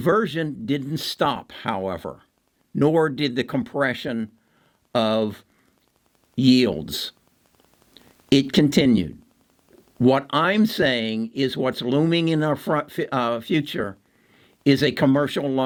didn't stop, however, nor did the compression of yields. It continued. What I'm saying is what's looming in our future is a commercial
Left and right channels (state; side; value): identical; both; correlation 1.00